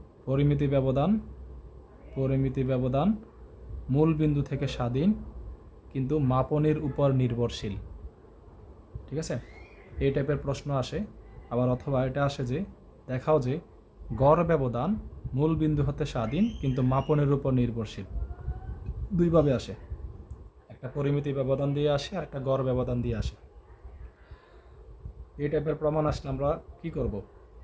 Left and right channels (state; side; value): identical; both; correlation 1.00